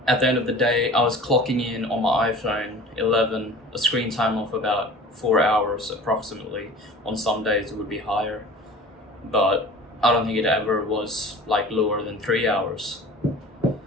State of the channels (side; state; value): both; normal; correlation 0.41